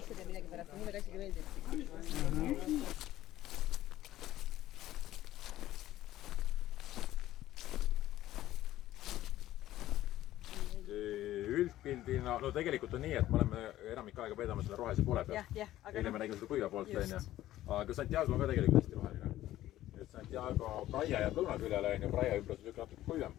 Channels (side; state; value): right; quieter; 14.3 dB